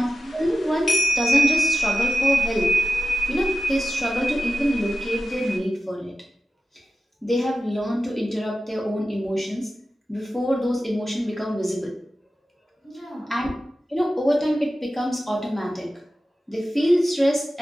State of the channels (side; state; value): both; normal; correlation 0.94